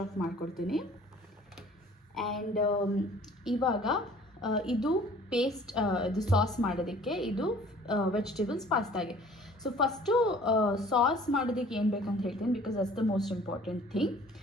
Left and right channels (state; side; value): normal; both; correlation 0.51